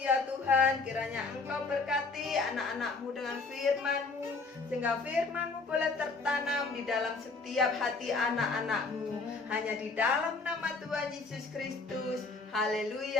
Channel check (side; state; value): right; quieter; 3.9 dB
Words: Tuhan. Kiranya Engkau berkati anak-anak-Mu dengan firman-Mu, sehingga firman-Mu boleh tertanam di dalam setiap hati anak-anak-Mu. Hanya di dalam nama Tuhan Yesus Kristus.